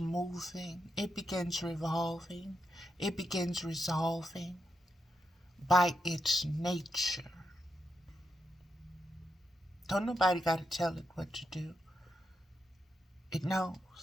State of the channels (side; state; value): both; normal; correlation 0.84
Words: It begins revolving. It begins resolving by its nature. Don't nobody got to tell it what to do. It